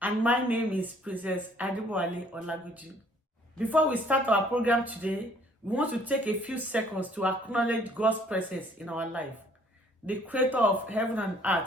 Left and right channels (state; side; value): normal; both; correlation 0.60